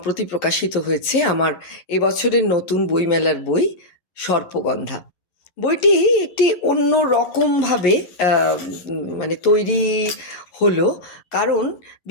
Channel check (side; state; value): right; late; 11 ms